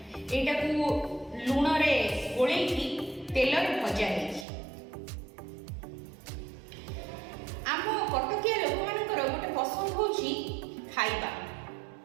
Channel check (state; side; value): drops out; left; at 4.5 s